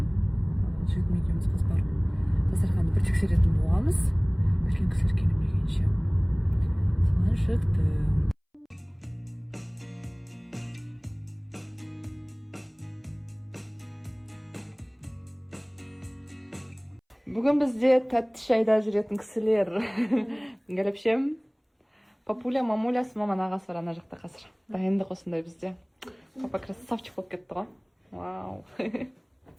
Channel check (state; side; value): identical; both; correlation 1.00